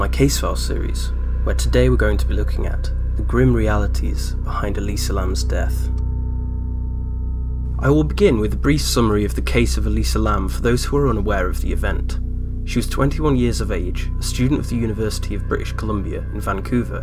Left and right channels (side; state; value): both; identical; correlation 1.00